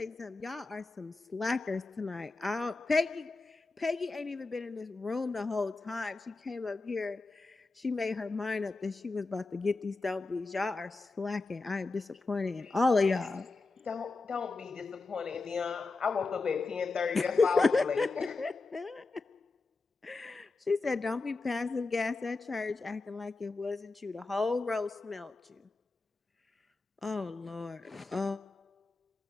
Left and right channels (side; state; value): right; quieter; 3.7 dB